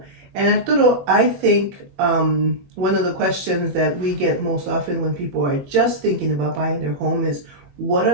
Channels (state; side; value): late; left; 21 ms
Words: And Arturo, I think one of the questions that we get most often when people are just thinking about buying their home is, what